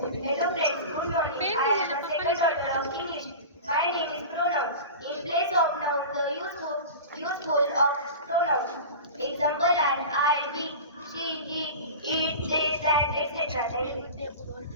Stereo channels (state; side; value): inverted; both; correlation -0.32